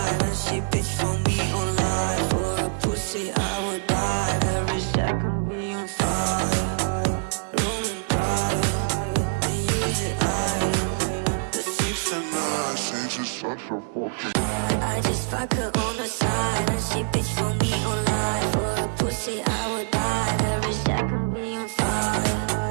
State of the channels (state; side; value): silent; left; 62 dB below the other